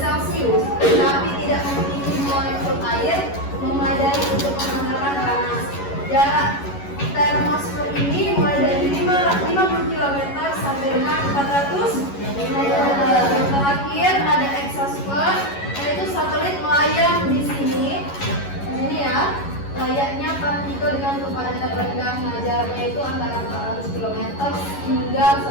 tapi tidak memiliki molekul air memadai untuk menghantarkan panas. Jarak termosfer ini mulai dari 50 km sampai dengan 400 meter. Yang terakhir ada exosfer, yaitu satelit melayang di sini ya, layaknya partikel dengan kepadatan rendah. Nah, jaraknya itu antara 400 km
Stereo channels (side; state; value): right; late; 11 ms